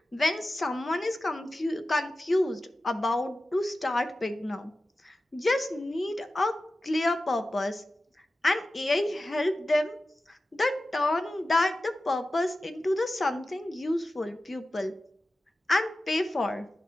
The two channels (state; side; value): normal; both; correlation 0.94